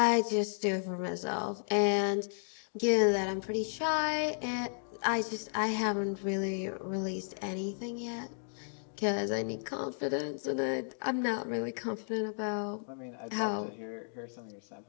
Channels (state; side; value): silent; right; digital silence